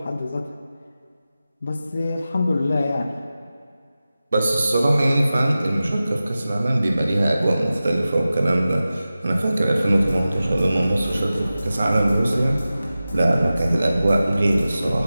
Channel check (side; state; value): both; inverted; correlation -0.95